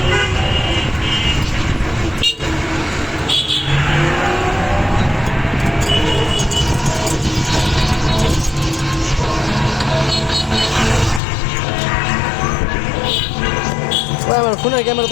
আমার ফোনের ক্যামেরা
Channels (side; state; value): right; drops out; at 11.2 s